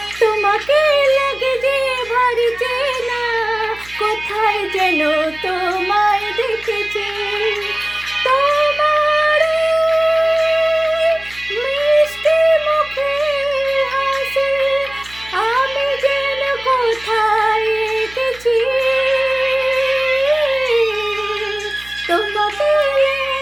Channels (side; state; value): right; noise; hum, 21 dB below the sound